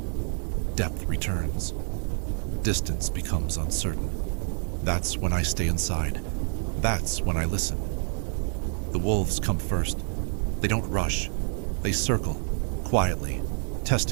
Depth returns. Distance becomes uncertain. That's when I stay inside. That's when I listen. The wolves come first. They don't rush. They circle, quietly,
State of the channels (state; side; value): silent; left; 55 dB below the other